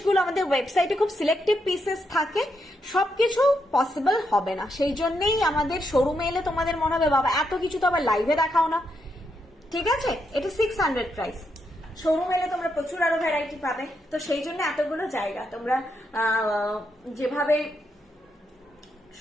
আমাদের ওয়েবসাইটে খুব সিলেক্টিভ পিসেস থাকে, সবকিছু পসিবল হবে না। সেই জন্যই আমাদের শোরুমে এলে তোমাদের মনে হবে বাবা এত কিছু তো আবার লাইভে দেখাও না, ঠিক আছে। এটা 600 প্রাইস, শোরুম এলে তোমরা প্রচুর আরো ভ্যারাইটি পাবে। তো সেই জন্য এতগুলো জায়গা তোমরা যেভাবে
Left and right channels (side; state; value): both; normal; correlation 0.81